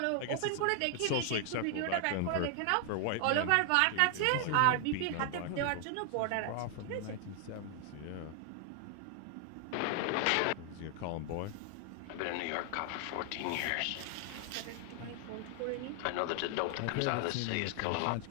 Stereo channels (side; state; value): both; different; correlation 0.00